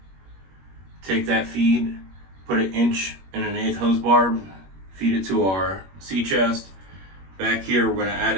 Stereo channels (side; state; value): left; late; 21 ms